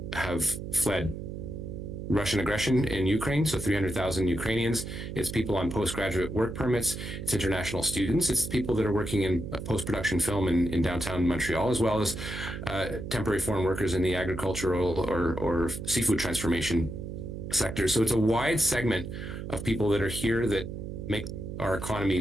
have fled Russian aggression in Ukraine, so 300,000 Ukrainians. It's people on postgraduate work permits. It's international students. It's people that are working in post-production film in downtown Montreal, as well as temporary foreign workers in the agricultural or seafood transformation sector. So it's a wide segment of people that are here that make our economy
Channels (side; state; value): right; noise; hum, 7 dB below the sound